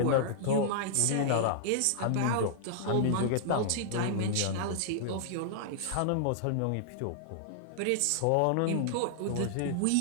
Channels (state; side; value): different; both; correlation -0.01